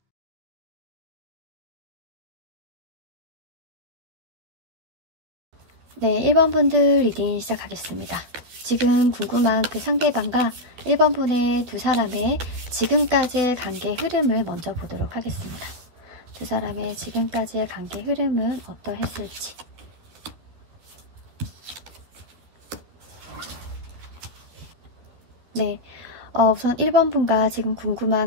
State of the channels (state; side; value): late; left; 12 ms